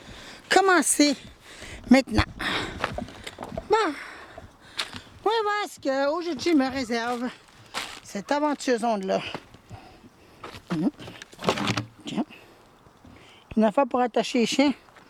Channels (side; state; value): both; identical; correlation 1.00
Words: commencer maintenant. Bon, on va voir ce qu'aujourd'hui me réserve cette aventure zone-là. Tiens. Une affaire pour attacher les chiens.